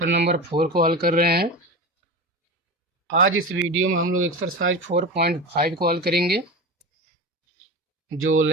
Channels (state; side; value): normal; both; correlation 0.26